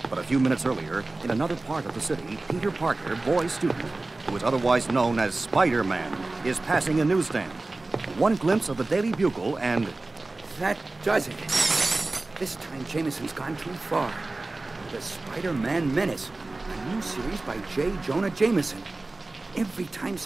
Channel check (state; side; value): quieter; left; 3.1 dB